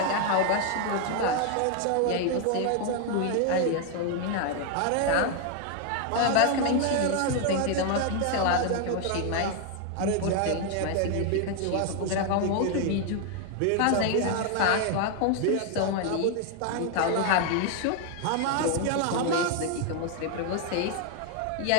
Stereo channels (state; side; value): different; both; correlation 0.00